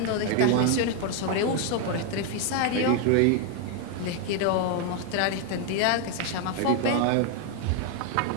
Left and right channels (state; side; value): different; both; correlation 0.01